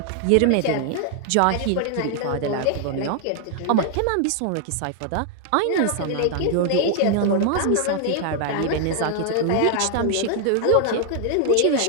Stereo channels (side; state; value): both; different; correlation 0.00